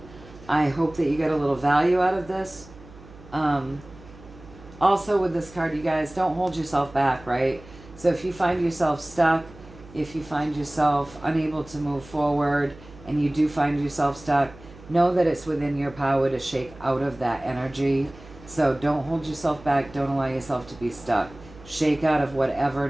I hope that you get a little value out of this. Also with this card, you guys, don't hold yourself back, right? So if you find yourself stuck, if you find yourself unable to move forward, and you do find yourself stuck, know that it's within your power to shake out of that energy. So don't hold yourself back. Don't allow yourself to be stuck. Shake out of whatever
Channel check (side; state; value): right; noise; hum, 20 dB below the sound